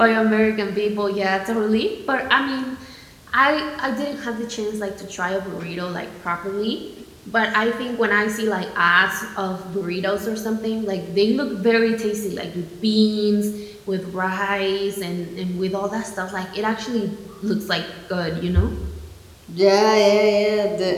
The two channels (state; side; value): identical; both; correlation 1.00